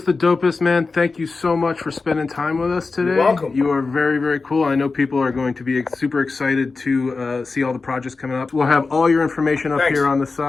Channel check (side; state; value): right; quieter; 4.1 dB